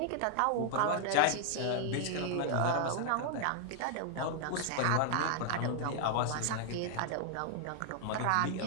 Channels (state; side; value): different; both; correlation -0.01